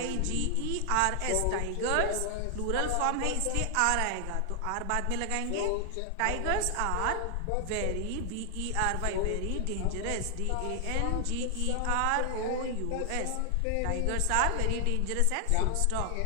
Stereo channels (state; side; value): different; both; correlation 0.00